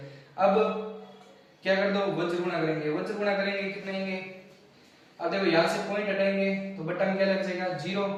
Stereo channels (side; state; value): both; identical; correlation 1.00